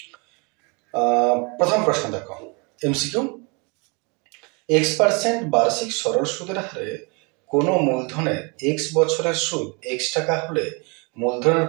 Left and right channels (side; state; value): left; quieter; 30.9 dB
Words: প্রথম প্রশ্ন দেখো, এমসিকিউ। x% বার্ষিক সরল সুদের হারে কোনো মূলধনের x বছরের সুদ x টাকা হলে মূলধনের